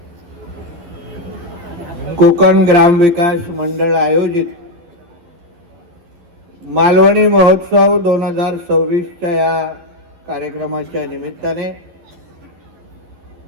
कोकण ग्राम विकास मंडळ आयोजित मालवणी महोत्सव 2026च्या या कार्यक्रमाच्या निमित्ताने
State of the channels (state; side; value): late; left; 12 ms